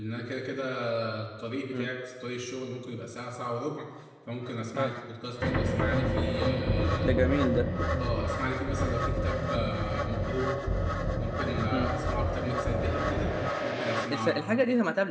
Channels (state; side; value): identical; both; correlation 1.00